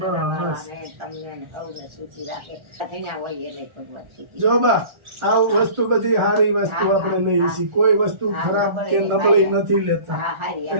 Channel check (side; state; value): left; late; 1.4 ms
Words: તમને ને સૌને સૂચી રાખે. ધણ્યા હોય એને ભગવાન સૂચી જો બા આ વસ્તુ બધી સારી વસ્તુ આપણે લઈએ છીએ, કોઈ વસ્તુ ખરાબ કે નબળી નથી લેતા. હા, હારી